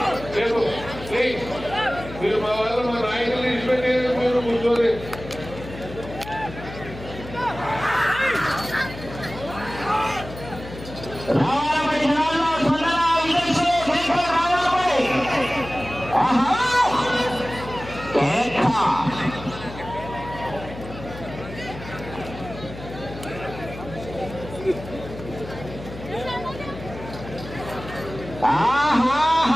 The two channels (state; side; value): noise; left; hum, 13 dB below the sound